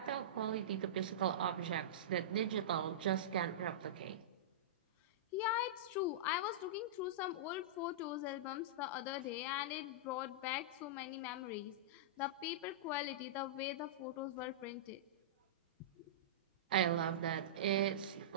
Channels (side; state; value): both; normal; correlation -0.16